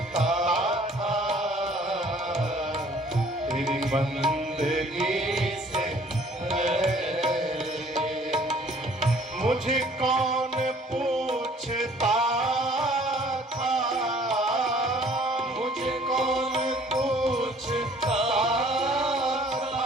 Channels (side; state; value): both; normal; correlation 0.56